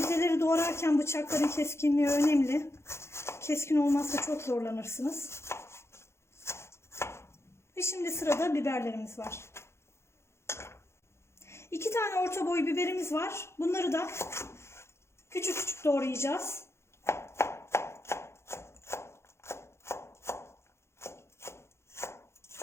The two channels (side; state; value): right; late; 0.13 ms